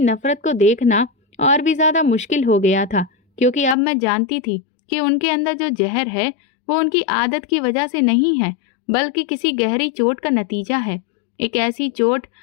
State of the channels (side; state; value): right; drops out; at 3.8 s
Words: नफरत को देखना और भी ज्यादा मुश्किल हो गया था, क्योंकि अब मैं जानती थी कि उनके अंदर जो जहर है वो उनकी आदत की वजह से नहीं है, बल्कि किसी गहरी चोट का नतीजा है। एक ऐसी चोट